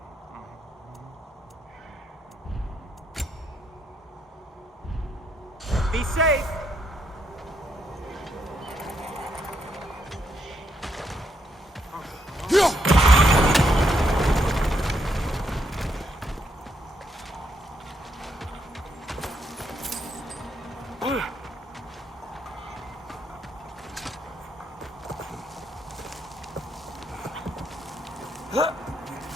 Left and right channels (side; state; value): both; normal; correlation 0.76